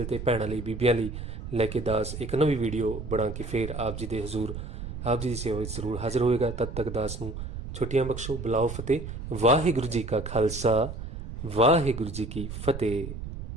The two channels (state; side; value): noise; right; rumble, 8 dB below the sound